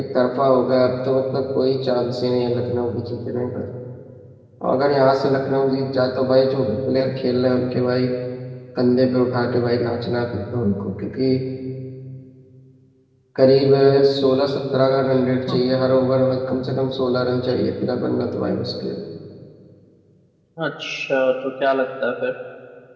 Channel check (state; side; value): identical; both; correlation 1.00